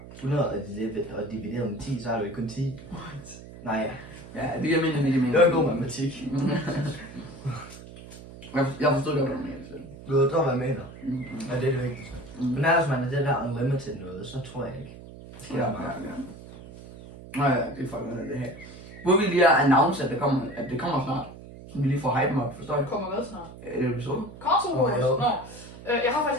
100 og divideret med 10, så er det jo kun 10. Nej. Ja, det giver mening. Det var en god matematik. Jeg forstod godt, hvad du mener. Du ved, hvad jeg mener. Ja, det er det vigtigste. Men ellers man er det der unlimited noget, så tror jeg ikke. Det sker bare. Nej, det er fucking det her. Hvor vi lige har announced, at det kommer snart. Så vi lige får hype op, forstår jeg? Kommer hvad snart? Er det episode? Console Wars? Nå. Jeg har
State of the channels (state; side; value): noise; right; hum, 16 dB below the sound